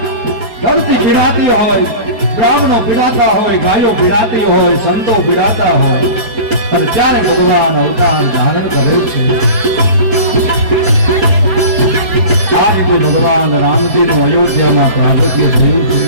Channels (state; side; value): late; left; 4.7 ms